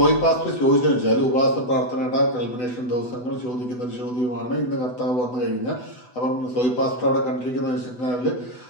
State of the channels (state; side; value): late; right; 8.1 ms